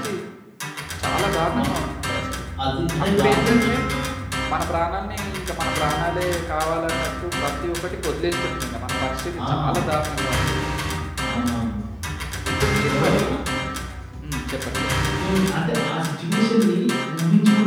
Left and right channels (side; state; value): both; identical; correlation 1.00